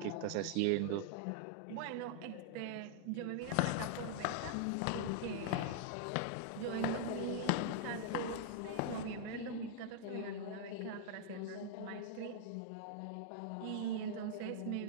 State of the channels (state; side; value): different; both; correlation -0.01